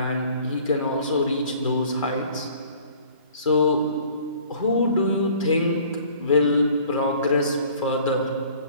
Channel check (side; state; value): both; inverted; correlation -0.52